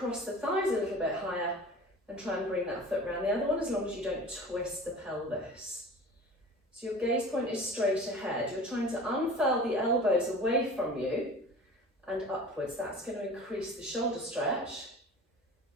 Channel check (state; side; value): normal; both; correlation 0.40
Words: the thighs a little bit higher and try and bring that foot round the other one, as long as you don't twist the pelvis. So your gaze point is straight ahead. You're trying to unfurl the elbows away from you and upwards. That's going to increase the shoulder stretch.